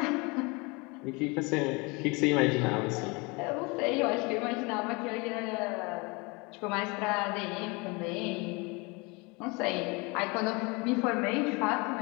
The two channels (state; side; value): quieter; right; 27.8 dB